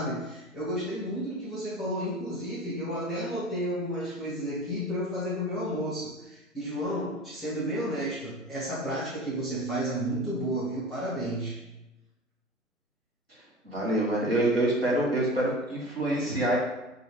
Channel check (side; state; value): both; normal; correlation 0.34